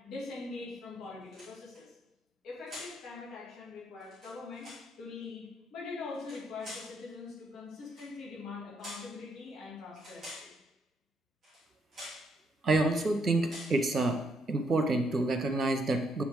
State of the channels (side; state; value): both; normal; correlation 0.74